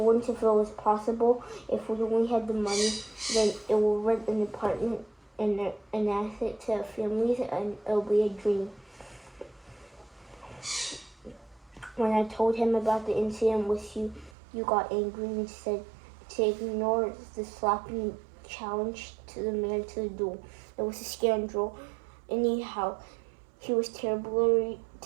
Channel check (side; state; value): left; drops out; at 14.4 s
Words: ones, if it was possible, if we only had the money, then it will rent an apartment and an asset to families, and it'll be a dream. When I told him about the incident with you, you got angry and said to ignore the slapping challenge to the man to the duel. It was a scandal. Anyhow, he was terribly